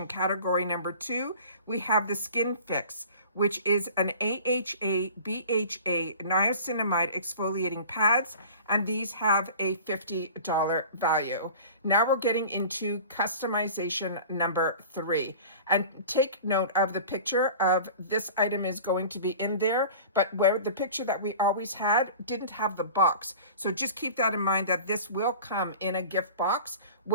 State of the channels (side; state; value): both; inverted; correlation -0.40